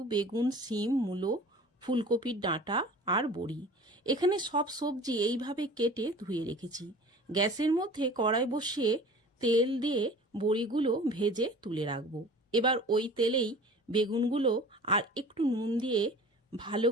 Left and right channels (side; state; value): both; normal; correlation 0.42